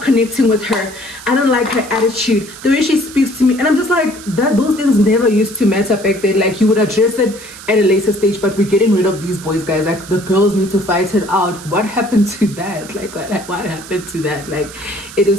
connecting with her. I don't like her attitude, the way she speaks to me. And I'm just like, those things never used to matter back then. Like you would address it at a later stage, but we're getting rid of these boys, guys. Like the girls need to fight it out. What happened to that? Like what happened to that? Like it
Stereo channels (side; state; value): right; noise; hiss, 16 dB below the sound